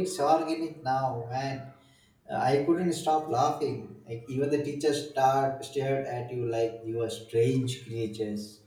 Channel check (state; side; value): identical; both; correlation 1.00